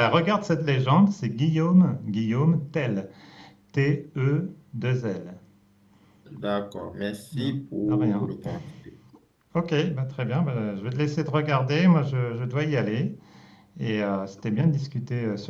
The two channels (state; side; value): identical; both; correlation 1.00